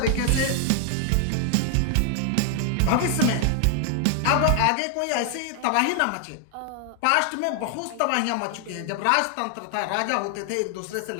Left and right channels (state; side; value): different; both; correlation 0.00